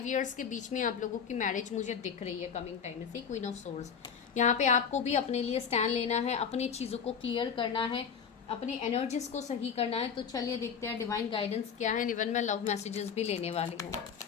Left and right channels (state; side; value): quieter; right; 7.0 dB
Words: ईयर्स के बीच में आप लोगों की मैरिज मुझे दिख रही है कमिंग टाइम में। सी क्वीन ऑफ सोर्स, यहाँ पे आपको भी अपने लिए स्टैंड लेना है, अपनी चीज़ों को क्लियर करना है, अपनी एनर्जीज को सही करना है। तो चलिए देखते हैं डिवाइन गाइडेंस क्या है। इवन मैं लव मैसेजेस भी लेने वाली हूँ।